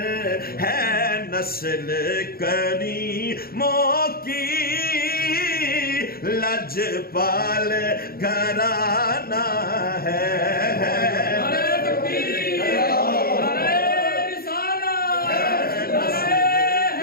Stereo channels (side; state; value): right; late; 0.44 ms